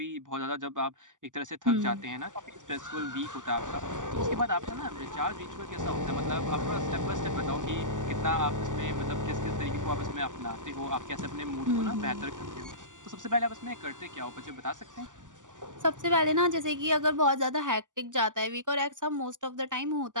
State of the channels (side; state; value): left; late; 0.87 ms